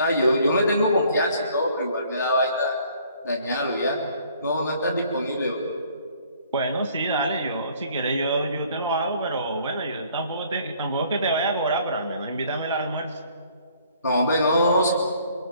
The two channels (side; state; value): both; inverted; correlation -0.59